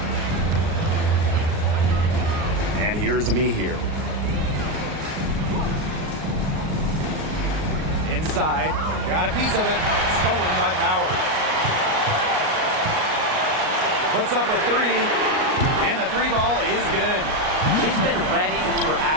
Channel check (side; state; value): left; late; 38 ms